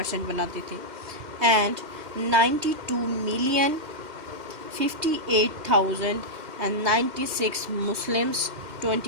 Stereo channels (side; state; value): left; late; 2.1 ms